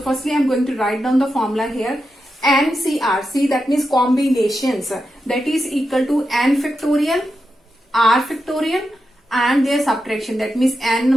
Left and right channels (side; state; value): both; normal; correlation 0.88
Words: firstly I am going to write down the formula here. NCR, see, that means combinations, that is equal to n factorial, r factorial and their subtraction, that means n